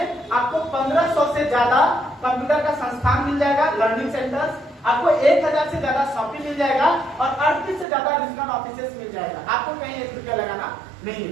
आपको 1500 से ज्यादा कंप्यूटर का संस्थान मिल जाएगा, लर्निंग सेंटर्स, आपको 1000 से ज्यादा शॉपिंग मिल जाएगा और 38 से ज्यादा रीजनल ऑफिसेस मिल जाएगा। आपको कहीं 1 रुपया लगाना नहीं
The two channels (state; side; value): drops out; left; at 7.9 s